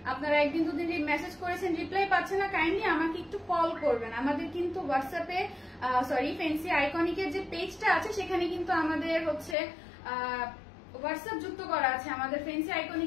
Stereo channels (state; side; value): drops out; right; at 9.6 s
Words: আপনারা একদিন দুদিন মেসেজ করেছেন, রিপ্লাই পাচ্ছেন না, কাইন্ডলি আমাকে একটু কল করবেন। আমাদের কিন্তু হোয়াটসঅ্যাপে ফেন্সি আইকনিকের যে পেজটা আছে সেখানে কিন্তু আমাদের হোয়াটসঅ্যাপ যুক্ত করা আছে। আমাদের ফেন্সি